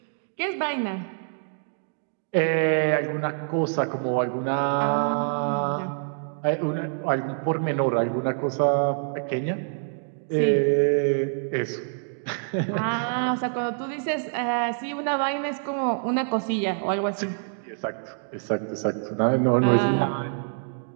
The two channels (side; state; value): left; silent; digital silence